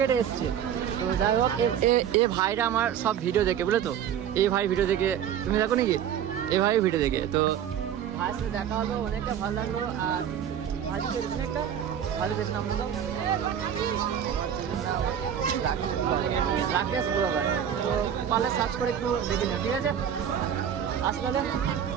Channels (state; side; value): quieter; left; 9.2 dB